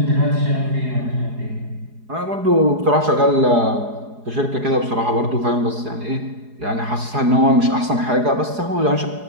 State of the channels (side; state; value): left; late; 4.8 ms